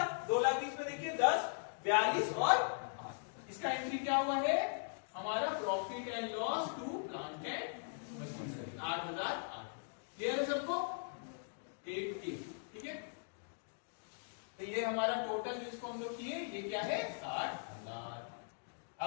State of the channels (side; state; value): right; silent; digital silence